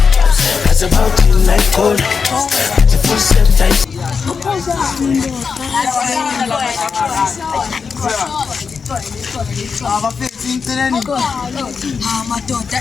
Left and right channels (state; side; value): quieter; right; 5.5 dB